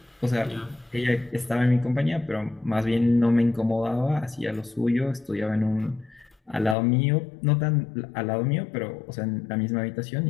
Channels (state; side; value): drops out; right; at 6.8 s